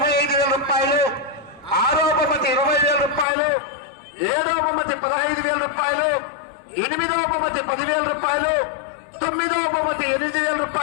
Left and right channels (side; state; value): right; drops out; at 3.2 s